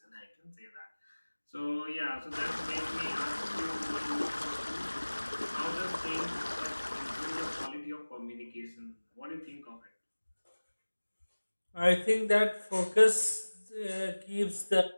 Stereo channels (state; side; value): inverted; both; correlation -1.00